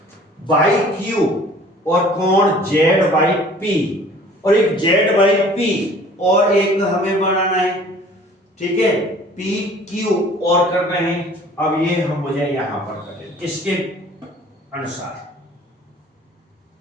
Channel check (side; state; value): both; normal; correlation 0.51